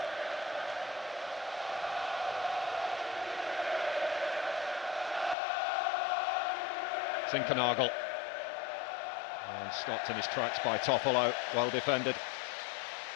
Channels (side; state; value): right; drops out; at 5.4 s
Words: Zinkernagel. And stopped in his tracks by Toffolo. Well defended.